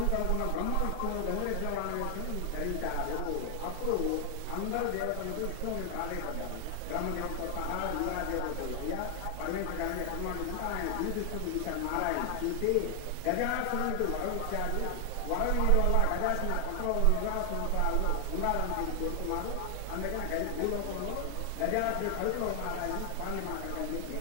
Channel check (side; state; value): both; different; correlation 0.00